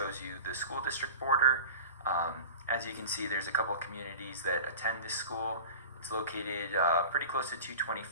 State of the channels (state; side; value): inverted; both; correlation -0.35